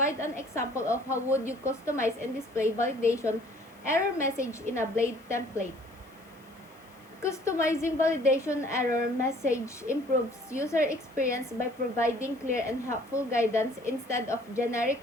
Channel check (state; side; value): noise; left; hiss, 30 dB below the sound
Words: an example of how would you customize and display validation error message in a Blade template. Customizing validation error message improves user experience by providing clear and helpful guidance instead of generic